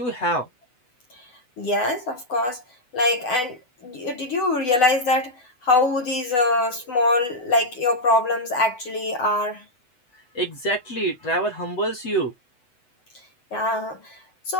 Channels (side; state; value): right; late; 8.2 ms